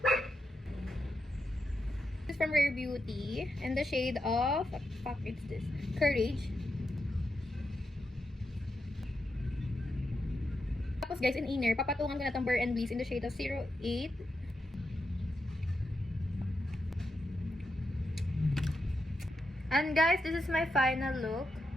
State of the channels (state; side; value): normal; both; correlation 0.85